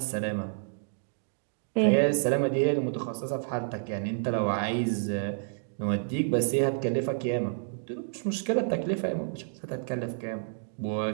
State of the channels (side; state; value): left; silent; digital silence